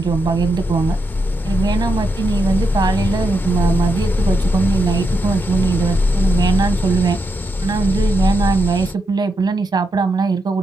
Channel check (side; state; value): both; normal; correlation 0.83